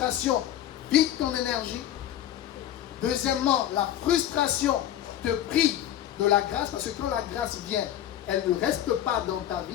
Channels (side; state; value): right; quieter; 11.6 dB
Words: vide ton énergie. Deuxièmement, la frustration te prive de la grâce, parce que quand la grâce vient, elle ne reste pas dans ta